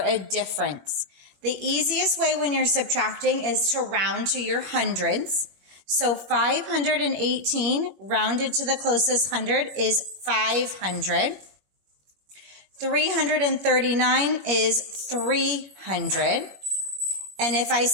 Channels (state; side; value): late; left; 21 ms